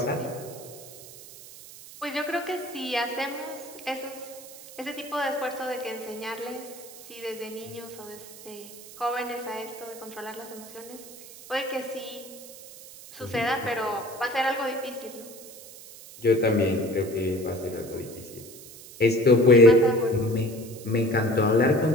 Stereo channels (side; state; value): right; noise; hiss, 17 dB below the sound